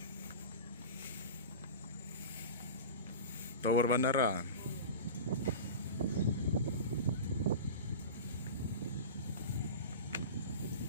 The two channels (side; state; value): both; inverted; correlation -0.30